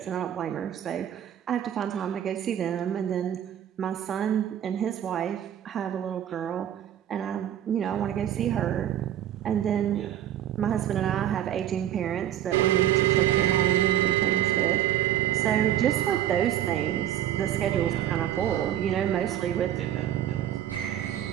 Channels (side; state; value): left; quieter; 11.3 dB